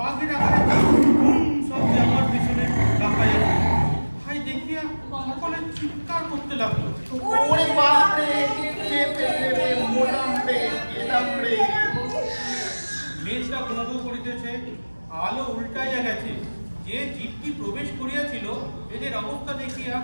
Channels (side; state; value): both; inverted; correlation -1.00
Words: আকারে শব্দে আমার আলো উল্টাইয়া গেছে। যে জীবটি প্রবেশ করিয়াছিল এদের অবস্থা দেখিয়া